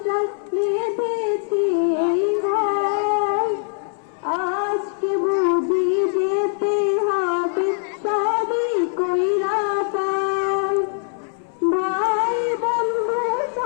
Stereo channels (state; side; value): silent; right; 64 dB below the other